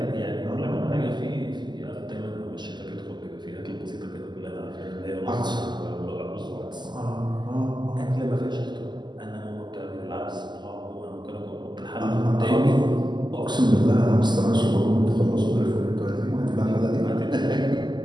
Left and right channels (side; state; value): left; late; 0.21 ms